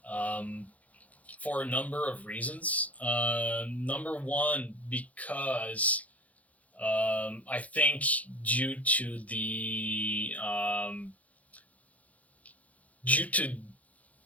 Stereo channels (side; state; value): right; late; 0.070 ms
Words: For a number of reasons. Number one, because I think due to the